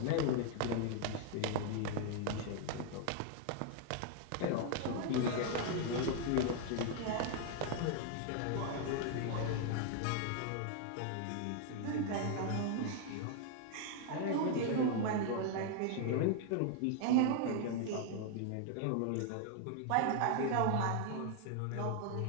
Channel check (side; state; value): both; different; correlation 0.00